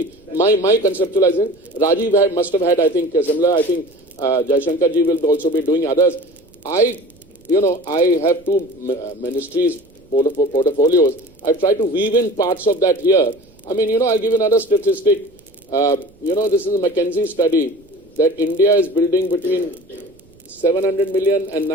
my conceptualizing. Rajiv must have had, I think, similar. I think Jaishankar ji will also be doing others. I have 2 ministries portfolios. I've tried to weave in parts of that here. I mean, I'll give another statistic. This is a McKinsey study that India is building between 700 million and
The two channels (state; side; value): noise; right; rumble, 30 dB below the sound